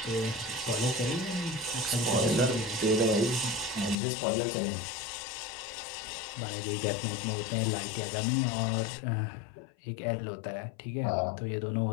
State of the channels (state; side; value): drops out; right; at 4.0 s